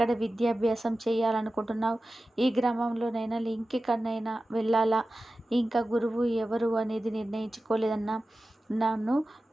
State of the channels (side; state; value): both; normal; correlation 0.94